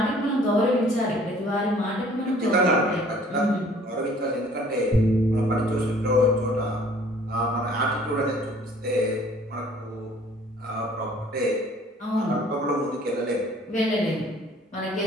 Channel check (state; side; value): normal; both; correlation 0.55